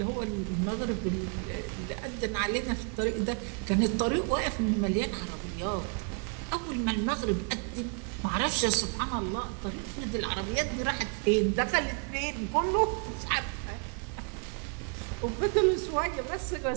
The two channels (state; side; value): quieter; left; 39.1 dB